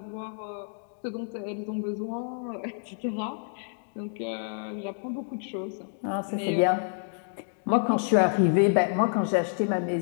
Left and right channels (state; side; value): silent; right; digital silence